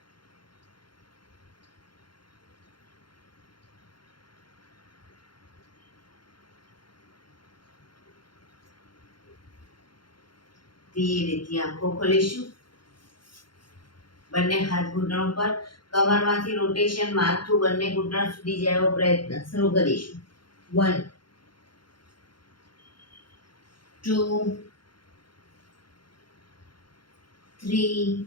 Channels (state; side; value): late; right; 0.72 ms